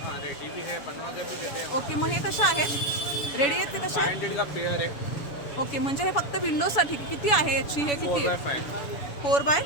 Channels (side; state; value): right; late; 7.1 ms